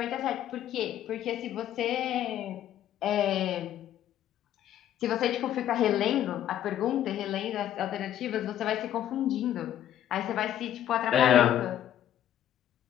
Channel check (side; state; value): right; quieter; 11.3 dB